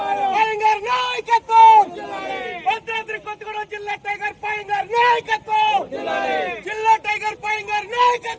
పయంగార్ నాయకత్వం. భద్రాద్రి కొత్తగూడెం జిల్లా టైగర్ పయంగార్ నాయకత్వం, జిల్లా టైగర్ పయంగార్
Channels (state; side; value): identical; both; correlation 1.00